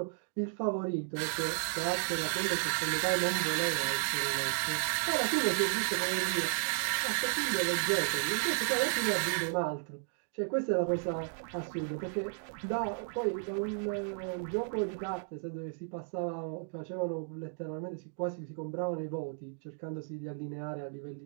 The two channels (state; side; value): silent; left; digital silence